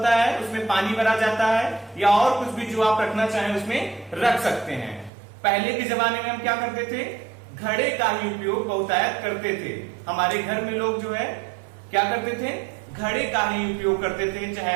है, उसमें पानी भरा जाता है या और कुछ भी जो आप रखना चाहें उसमें रख सकते हैं। पहले के जमाने में हम क्या करते थे? घड़े का ही उपयोग बहुतायत करते थे। हमारे घर में लोग जो है क्या करते थे? घड़े का ही उपयोग करते थे,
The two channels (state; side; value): drops out; left; at 5.1 s